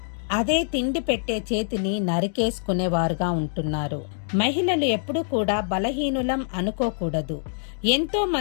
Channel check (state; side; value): silent; right; digital silence